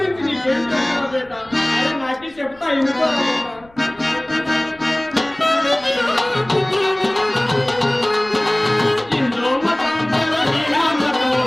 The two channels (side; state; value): left; noise; rumble, 28 dB below the sound